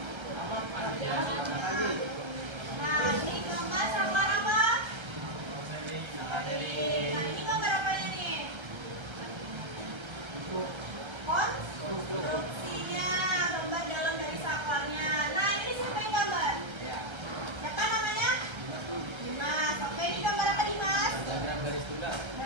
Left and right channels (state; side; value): late; left; 1.3 ms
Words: Nah, ini gambar saklar apa? Nah, ini gambar apanya nih? Konstruksinya, gambar dalam dari saklarnya. Nah, ini siapa yang gambar? Siapa namanya? Dimas. Oke, ini gambar apa Dimas? Diagram